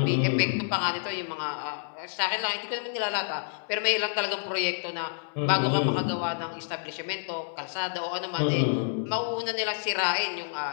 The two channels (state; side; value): silent; right; digital silence